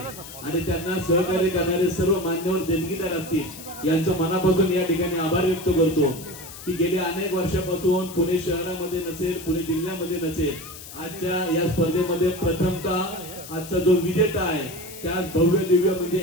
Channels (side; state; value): left; noise; hiss, 14 dB below the sound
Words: आणि त्यांना सहकार्य करणारे सर्व मान्यवर देणगीदार असतील यांचं मनापासून या ठिकाणी आभार व्यक्त करतो की गेल्या अनेक वर्षापासून पुणे शहरामध्ये नसेल, पुणे जिल्ह्यामध्ये नसेल, आजच्या या स्पर्धेमध्ये प्रथमतः आजचा जो विजेता आहे त्याच भव्य दिव्य म्हणजे